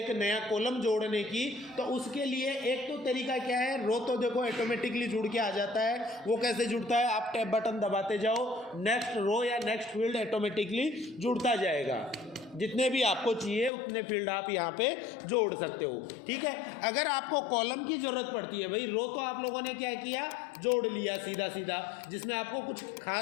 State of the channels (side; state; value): right; drops out; at 13.7 s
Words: नया कॉलम जोड़ने की, तो उसके लिए एक तो तरीका क्या है, रो तो देखो ऑटोमेटिकली जुड़ के आ जाता है। वो कैसे जुड़ता है, आप टैब बटन दबाते जाओ, नेक्स्ट रो या नेक्स्ट फील्ड ऑटोमेटिकली जुड़ता जाएगा। जितने भी आपको चाहिए उतने फील्ड आप यहाँ पे जोड़ सकते हो। ठीक है, अगर आपको कॉलम की जरूरत पड़ती है, भाई रो तो आप लोगों ने क्या किया, जोड़ लिया सीधा सीधा, जिसमें आपको कुछ